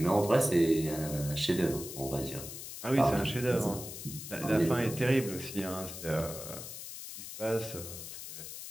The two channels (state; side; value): noise; left; hiss, 10 dB below the sound